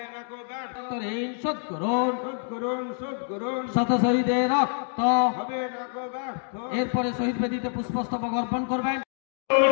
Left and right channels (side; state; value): right; silent; 57 dB below the other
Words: না কো ব্যর্থ, ঋণ শোধ করুন, শোধ করুন, শোধ করুন। শত শহীদের রক্ত হবে না কো ব্যর্থ। এরপরে শহীদ বেদিতে পুষ্পস্তবক অর্পণ করবেন।